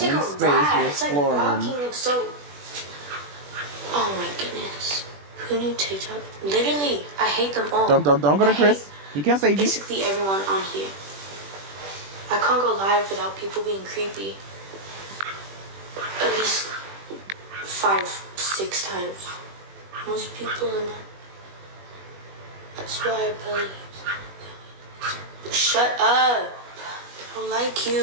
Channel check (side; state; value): left; late; 21 ms